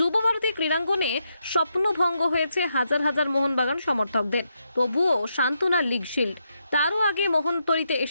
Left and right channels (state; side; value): inverted; both; correlation -0.81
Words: ভারতী ক্রীড়াঙ্গনে স্বপ্নভঙ্গ হয়েছে হাজার হাজার মোহনবাগান সমর্থকদের। তবুও সান্ত্বনা লিগ শিল্ড। তারও আগে মোহনতরিতে